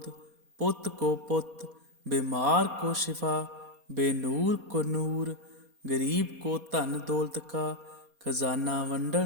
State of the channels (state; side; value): late; left; 4.2 ms